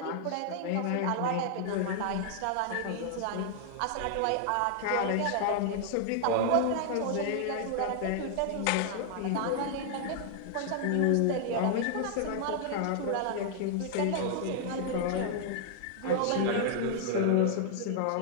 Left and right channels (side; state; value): both; different; correlation 0.00